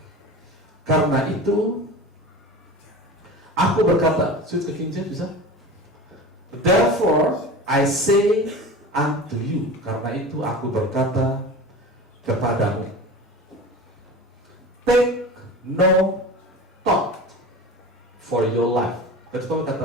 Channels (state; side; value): normal; both; correlation 0.33